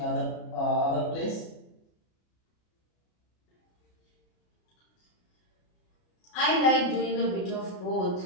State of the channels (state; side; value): late; right; 33 ms